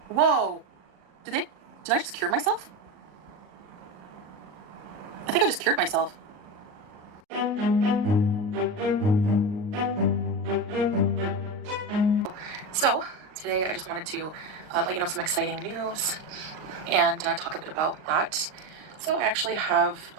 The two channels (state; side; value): late; left; 38 ms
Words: Whoa! Did I just cure myself? I think I just cured myself. So, today I just wanted to let you know some exciting news and talk a bit about that. So I actually have